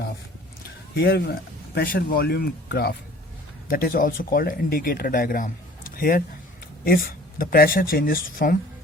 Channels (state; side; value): normal; both; correlation 0.50